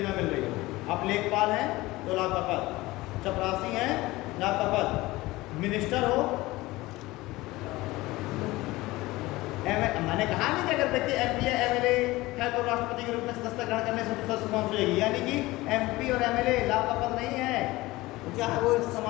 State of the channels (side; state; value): right; quieter; 19.6 dB